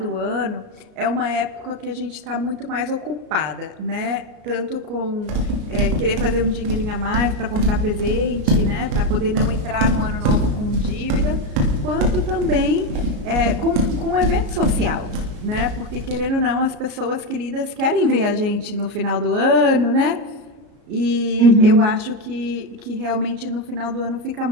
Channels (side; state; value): left; late; 33 ms